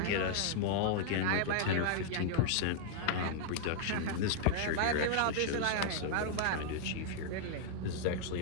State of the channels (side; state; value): both; different; correlation -0.01